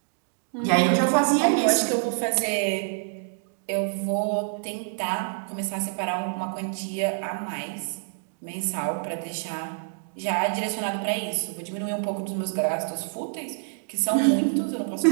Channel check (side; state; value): left; silent; digital silence